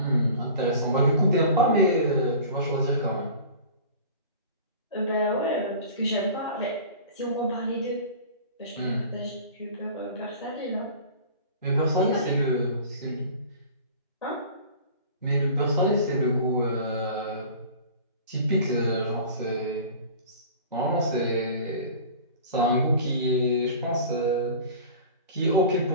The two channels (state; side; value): inverted; both; correlation -0.40